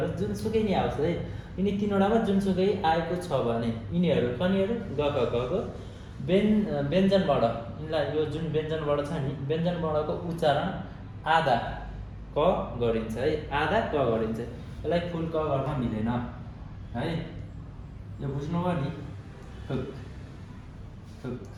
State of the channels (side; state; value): both; identical; correlation 1.00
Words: जुनसुकै नि आओस् है यिनी 3 वटामा जुनसुकै आएको छ भने यिनीहरू कनीहरू ग ख क को व्यञ्जनबाट यिनलाई यो जुन व्यञ्जनबाट छ नि व्यञ्जनबाटको उच्चारण आधा क गरिन्छ है आधा क गरिन्छ यसलाई फुल क गर्न मिलेन है यो बुझ्नुभयो नि हुक हुक